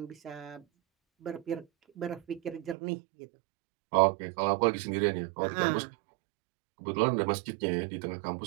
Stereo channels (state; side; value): drops out; left; at 2.8 s